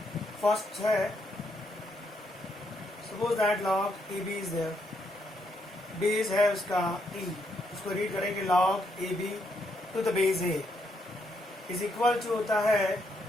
फर्स्ट है, suppose that log A B is there, base है उसका ई, उसको रीड करेंगे log A B to the base A is equal to होता है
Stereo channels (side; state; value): both; normal; correlation 0.76